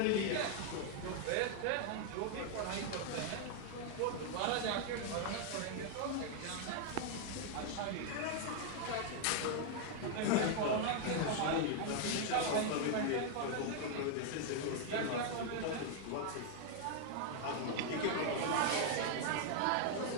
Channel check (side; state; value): both; different; correlation 0.00